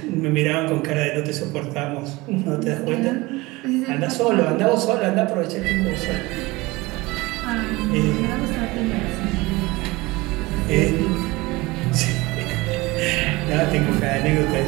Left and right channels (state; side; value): quieter; left; 21.8 dB